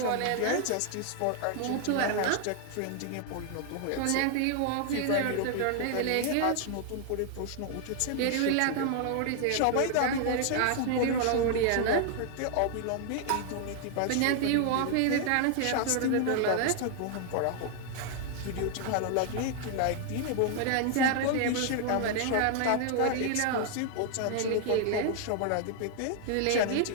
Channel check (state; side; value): different; both; correlation 0.00